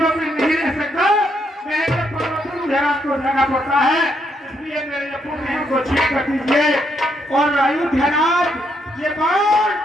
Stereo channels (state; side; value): normal; both; correlation 0.76